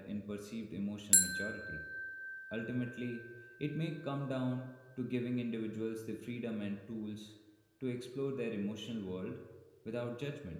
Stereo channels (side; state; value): both; identical; correlation 1.00